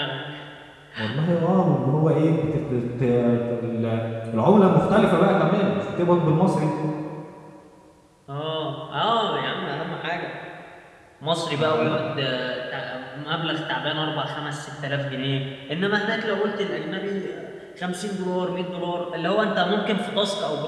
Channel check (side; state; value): both; identical; correlation 1.00